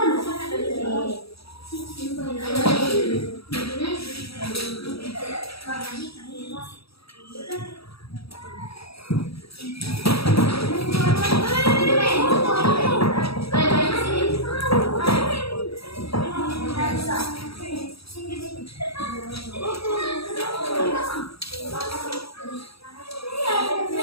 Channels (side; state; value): right; late; 0.77 ms